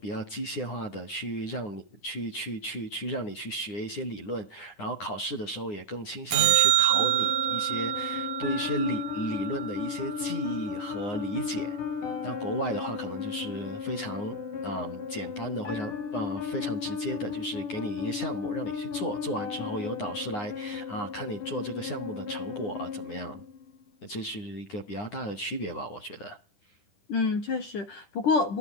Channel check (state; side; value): late; right; 9.7 ms